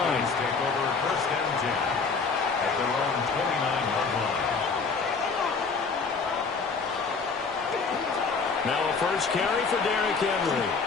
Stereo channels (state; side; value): quieter; right; 4.8 dB